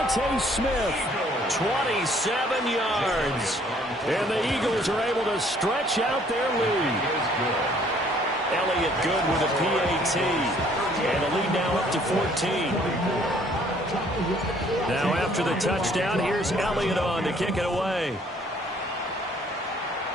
Smith, 27 yards. And the Eagles are able to stretch out their lead. Elliott good with a PAT. And a lead now up to 14. Now after the touchdown, here's Elliott on to kick it away.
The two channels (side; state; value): both; normal; correlation 0.61